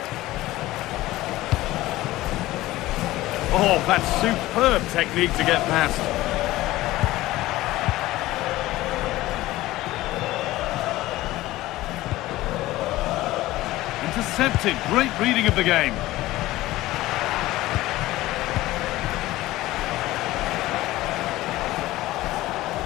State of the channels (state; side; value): quieter; right; 17.1 dB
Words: Oh, that's superb technique to get past. Intercepted. Great reading of the game.